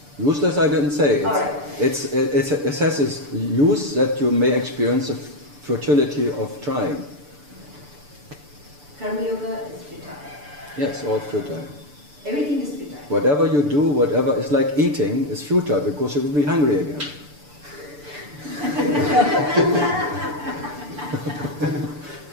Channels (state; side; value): late; left; 6.9 ms